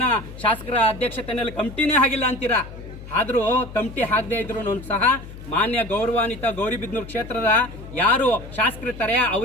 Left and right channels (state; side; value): noise; left; hum, 14 dB below the sound